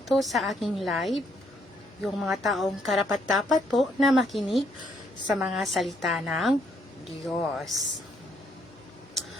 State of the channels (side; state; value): both; normal; correlation 0.71